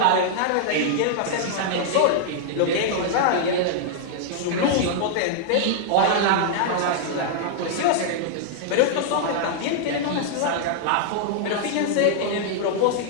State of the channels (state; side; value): different; both; correlation -0.01